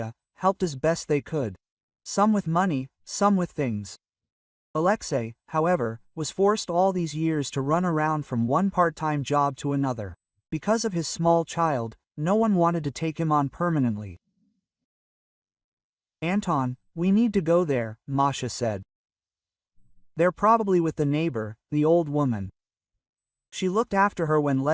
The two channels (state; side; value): identical; both; correlation 1.00